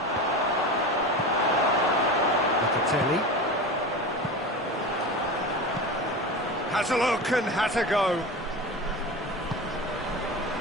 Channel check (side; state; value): both; normal; correlation 0.28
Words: Locatelli. Has a look and has a go.